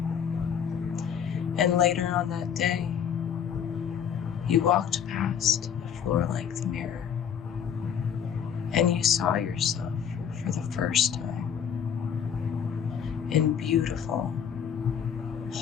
And later on that day, you walked past a floor-length mirror and you saw yourself for the first time in beautiful,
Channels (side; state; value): right; quieter; 8.1 dB